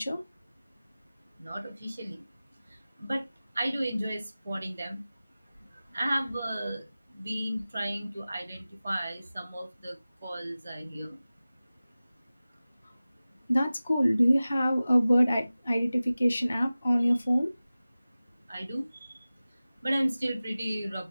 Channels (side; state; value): both; inverted; correlation -0.97